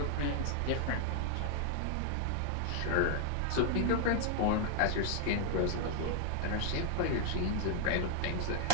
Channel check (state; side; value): different; both; correlation 0.00